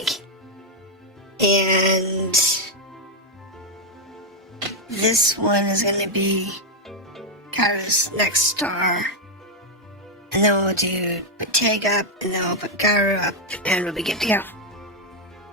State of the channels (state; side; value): normal; both; correlation 0.01